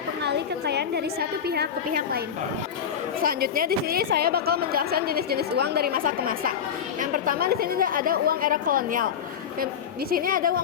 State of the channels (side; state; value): right; quieter; 7.9 dB